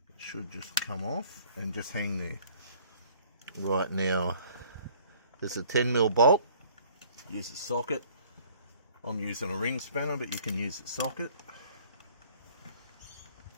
should just come off and just hang there. Right, now there's a 10mm bolt. Use a socket. I'm using a ring spanner, but you can use a socket.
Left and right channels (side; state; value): both; inverted; correlation -0.56